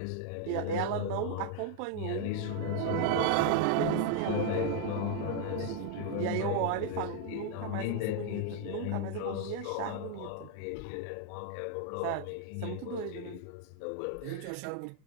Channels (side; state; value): both; different; correlation 0.00